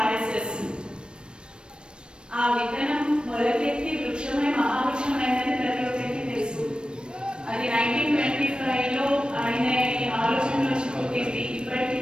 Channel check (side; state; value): left; late; 0.054 ms